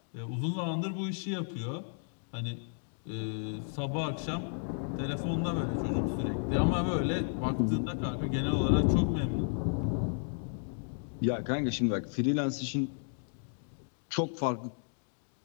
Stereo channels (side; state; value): right; silent; digital silence